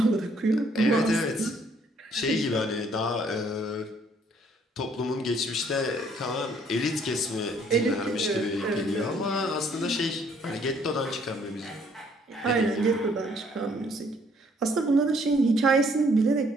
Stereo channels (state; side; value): normal; both; correlation 0.64